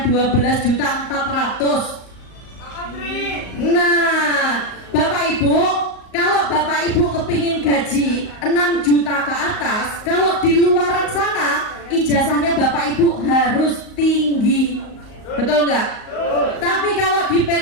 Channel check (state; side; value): late; right; 38 ms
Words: 12.400.000? Nah, Bapak Ibu, kalau Bapak Ibu kepingin gaji 6 juta ke atas, kalau di luaran sana ijazahnya Bapak Ibu harus tinggi, betul nggak? Tapi kalau di